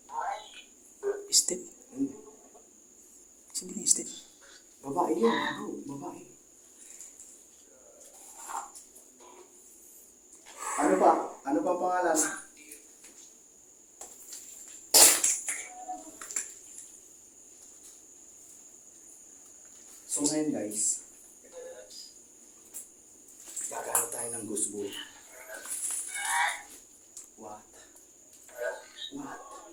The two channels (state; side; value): identical; both; correlation 1.00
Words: Step. Babae yun, bro. Babae. Ano pa? Ano pa pangalan? So ngayon guys, gagamit tayo ng ghost ball. What? What?